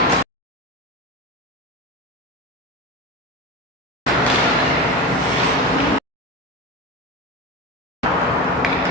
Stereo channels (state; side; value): normal; both; correlation 0.23